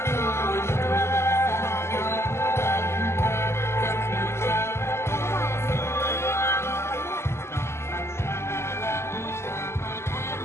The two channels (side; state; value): right; late; 0.13 ms